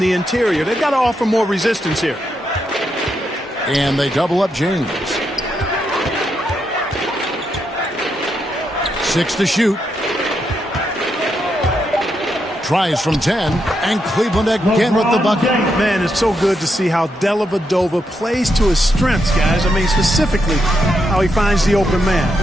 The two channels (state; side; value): normal; both; correlation 0.82